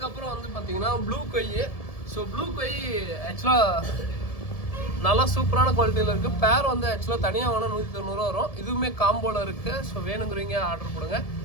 வந்து பார்த்தீங்கன்னா ப்ளூ கொய். ஸோ ப்ளூ கொய் ஆக்சுவலாக நல்லா சூப்பரான குவாலிட்டியில் இருக்குது. பேர் வந்து ஆக்சுவலாக தனியாக வேணால் 190 ரூபா வரும். இதுவுமே காம்போவில் இருக்குது. ஸோ வேணுங்கிறீங்க ஆர்டர் கொடுங்க.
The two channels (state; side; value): late; right; 1.7 ms